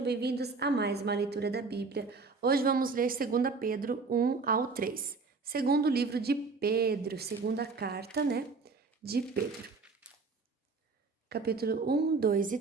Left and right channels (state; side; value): quieter; left; 4.3 dB